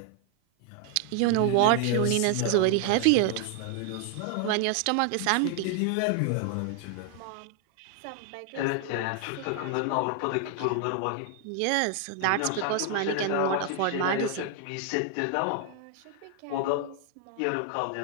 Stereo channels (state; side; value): different; both; correlation 0.00